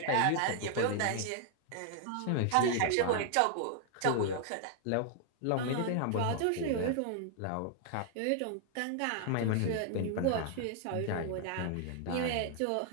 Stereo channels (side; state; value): both; different; correlation 0.00